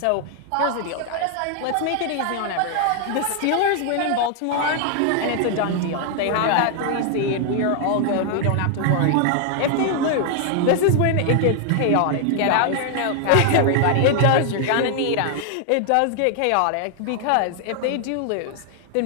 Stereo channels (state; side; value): different; both; correlation 0.00